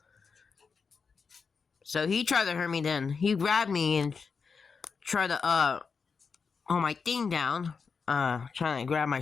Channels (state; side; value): quieter; right; 5.4 dB